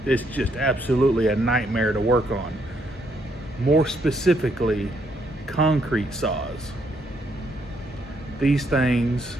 it's just absolutely a nightmare to work on. More specifically, concrete saws. These things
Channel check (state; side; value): normal; both; correlation 0.73